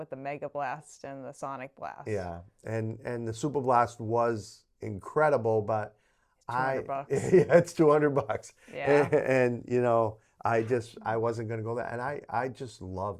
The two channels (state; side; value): identical; both; correlation 1.00